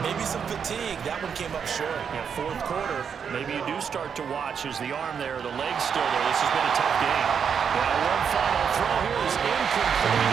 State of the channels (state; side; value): quieter; left; 7.0 dB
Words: Maybe some fatigue. That one came up short. Yeah, 4th quarter, maybe you do start to watch as the arm there, the leg's still there. This has been a tough game. Now one final throw here is incomplete.